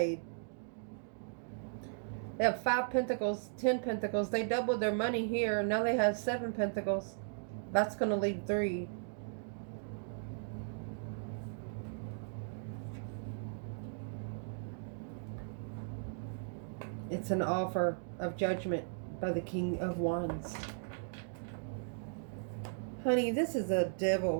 They have 5 pentacles, 10 pentacles. They doubled their money here. Now they have 7 pentacles. That's going to leave 3. It's an offer of judgment by the King of Wands. Honey, this is a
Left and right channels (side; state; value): left; silent; digital silence